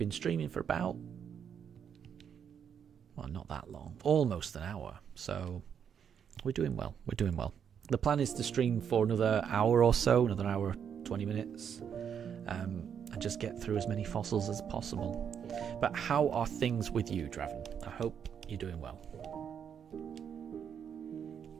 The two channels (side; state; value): left; quieter; 7.9 dB